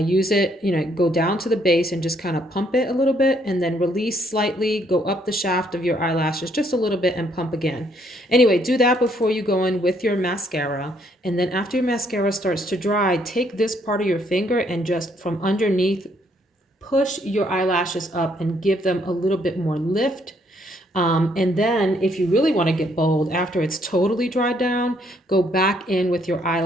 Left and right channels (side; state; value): both; normal; correlation 0.69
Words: it, you know, go down to the base and just kind of pump it a little bit and then release slightly, go up the shaft of your eyelashes just a little bit and pump again. Anyway, do that before you go in with your mascara. And then after your mascara starts to dry, take this part of your finger and just from underneath, push your eyelashes up and give them a little bit more lift. And then if you really want to get bold, after it's totally dried down, go back in with your